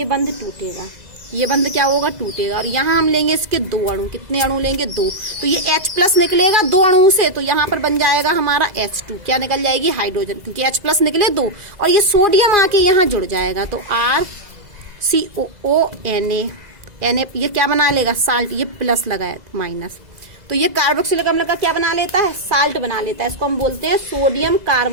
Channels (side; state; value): left; late; 2.0 ms